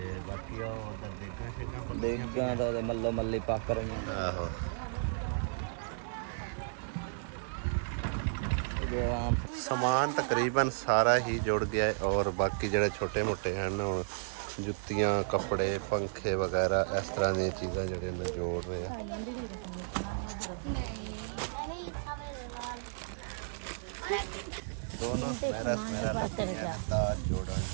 ਬਾਕੀ ਉਹ ਉਧਰ ਦੇਗਾਂ ਸ਼ੇਗਾਂ ਦੇਗਾਂ ਦਾ ਮੱਲੋ ਮੱਲੀ ਪੱਕ ਰਹੀਆਂ ਆਹੋ ਸਮਾਨ ਤਕਰੀਬਨ ਸਾਰਾ ਹੀ ਜੁੜ ਗਿਆ ਹੈ ਔਰ ਬਾਕੀ ਜਿਹੜੇ ਛੋਟੇ ਮੋਟੇ ਹਨ ਹੁਣ ਜੁੱਤੀਆਂ ਕੱਪੜੇ ਪੰਖੇ ਵਗੈਰਾ ਇਸ ਤਰ੍ਹਾਂ ਦੀਆਂ ਚੀਜ਼ਾਂ ਜਿਹੜੇ ਨੇ ਜੋੜ ਰਹੇ ਆ ਦੋਨੋਂ ਸਮੈਰਾ ਲੱਗੀਆਂ ਨੇ ਤਾਂ ਜੋੜਨ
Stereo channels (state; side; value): silent; left; digital silence